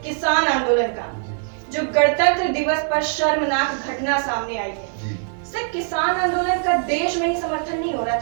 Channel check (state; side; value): silent; left; 64 dB below the other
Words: किसान आंदोलन का, जो गणतंत्र दिवस पर शर्मनाक घटना सामने आई है। सिर्फ किसान आंदोलन का देश में ही समर्थन नहीं हो रहा